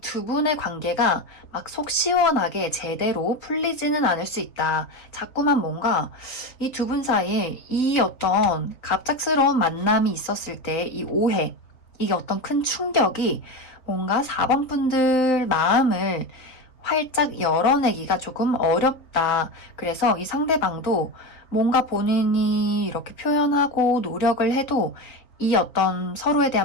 분의 관계가 막 속 시원하게 제대로 풀리지는 않을 수 있다. 자꾸만 뭔가 이 두 분 사이에 이 어떤 갑작스러운 만남이 있었을 때 이 오해, 이게 어떤 큰 충격이 뭔가 4번 분들 마음을 활짝 열어내기가 조금 어렵다. 그래서 이 상대방도 뭔가 본인이 이렇게 표현하고 노력을 해도 이 어떤 서로에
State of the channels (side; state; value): right; late; 4.1 ms